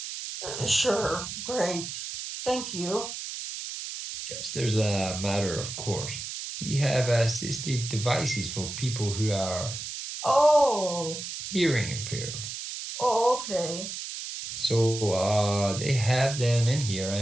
Sure, great. Thank you. Just as a matter of course, we have assistive devices for people who are hearing impaired. Oh, okay. So they have them in here,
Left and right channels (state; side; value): noise; right; hiss, 7 dB below the sound